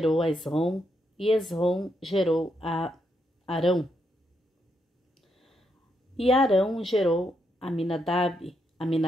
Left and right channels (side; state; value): both; normal; correlation 0.79